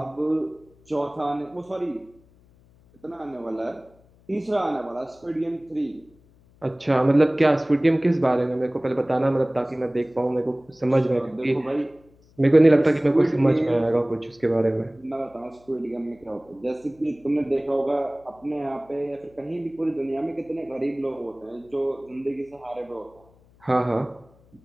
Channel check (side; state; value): left; noise; hum, 29 dB below the sound